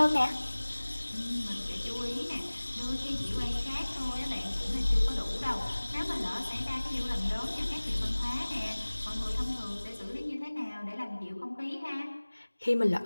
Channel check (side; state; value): both; inverted; correlation -1.00